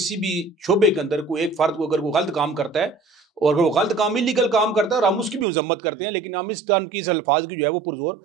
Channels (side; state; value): left; drops out; at 5.5 s